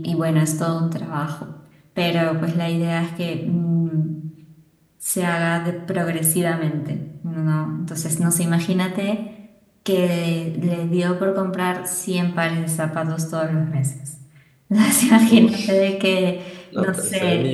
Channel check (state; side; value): identical; both; correlation 1.00